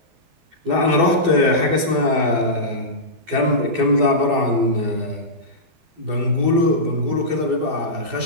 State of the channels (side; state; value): left; late; 12 ms